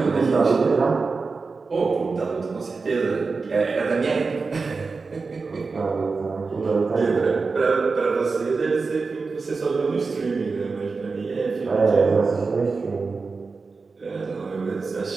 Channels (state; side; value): quieter; left; 4.4 dB